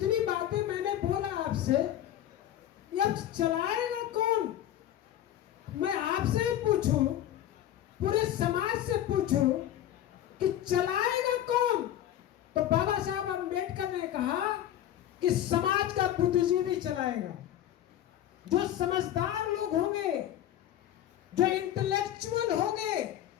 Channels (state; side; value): quieter; right; 11.9 dB